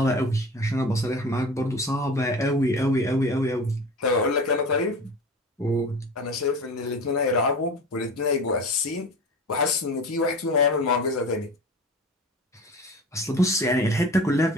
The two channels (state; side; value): normal; both; correlation 0.35